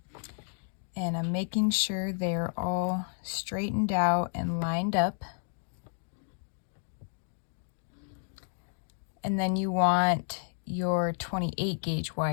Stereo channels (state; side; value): silent; right; digital silence